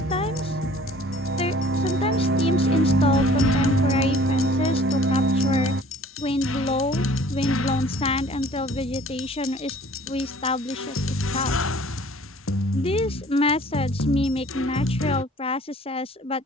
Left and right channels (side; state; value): both; normal; correlation 0.51